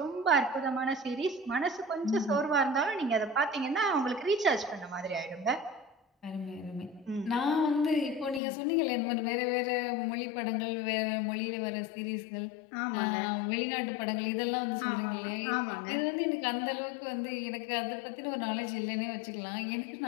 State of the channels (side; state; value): right; drops out; at 8.4 s